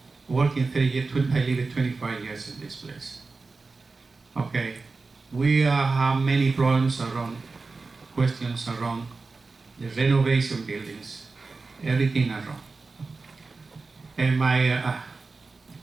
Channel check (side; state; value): left; quieter; 4.0 dB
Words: Working 30 years, I lived 25 years in this place. Okay, we have many problems around, questions around the renovation buildings, everything around. And